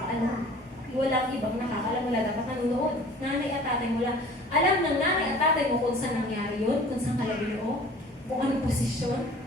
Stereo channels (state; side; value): normal; both; correlation 0.47